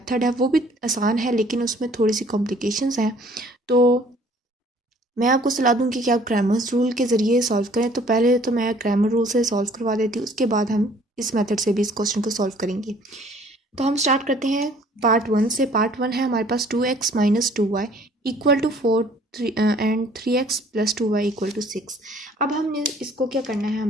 है वो भी आसान है, लेकिन उसमें थोड़ी सी कॉम्प्लिकेशंस हैं। तो मैं आपको सलाह दूंगी कि आप क्रैमर्स रूल के ज़रिए सॉल्व करें। तो पहले तो मैं क्रैमर रूल से सॉल्व करवा देती हूँ, उसके बाद हम इस मेथड से भी इस क्वेश्चन को सॉल्व करेंगे। तो हम स्टार्ट करते हैं पार्ट 1 से। पार्ट 1 है हमारे पास 2x minus 2y equal to 4 and 3x plus 2y equal to 6। अब हमने इसको क्या करना है,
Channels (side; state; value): both; normal; correlation 0.56